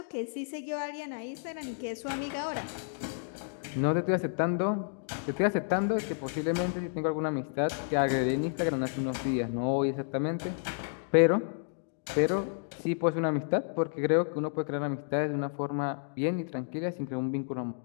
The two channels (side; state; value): right; silent; digital silence